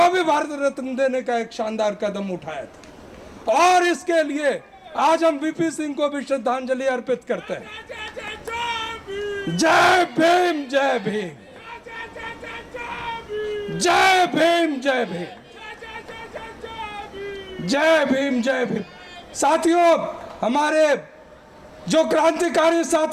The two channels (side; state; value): both; identical; correlation 1.00